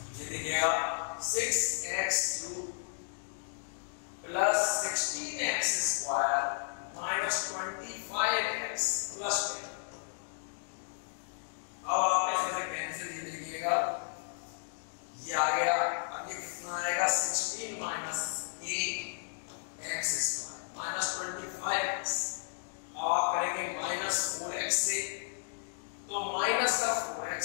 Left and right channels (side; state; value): right; silent; digital silence